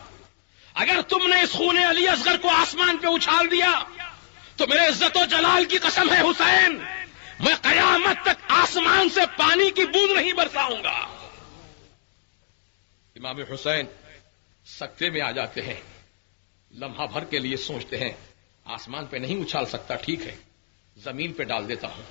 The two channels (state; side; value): silent; right; digital silence